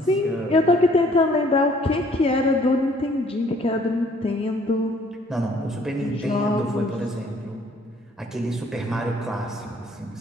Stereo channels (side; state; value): both; normal; correlation 0.60